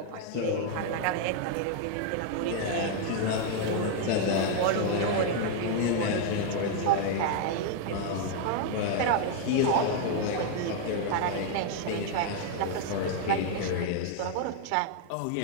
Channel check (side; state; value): both; different; correlation 0.00